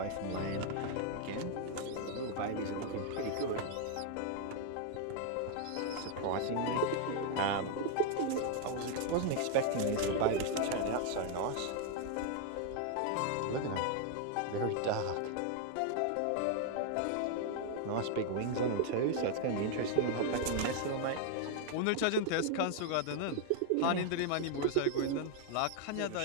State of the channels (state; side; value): different; both; correlation 0.00